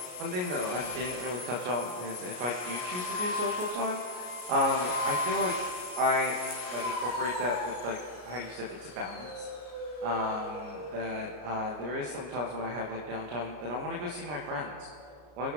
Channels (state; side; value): late; left; 33 ms